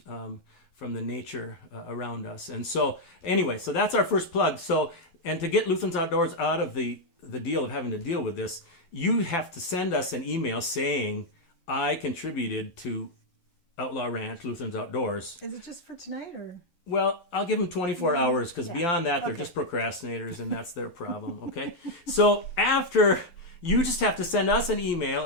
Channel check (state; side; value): late; right; 11 ms